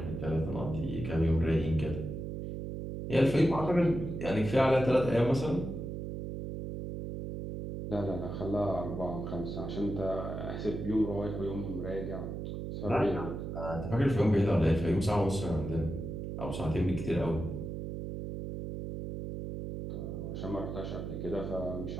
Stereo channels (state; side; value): noise; right; hum, 5 dB below the sound